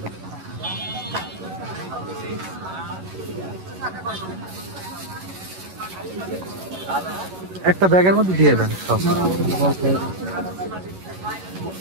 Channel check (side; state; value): left; late; 11 ms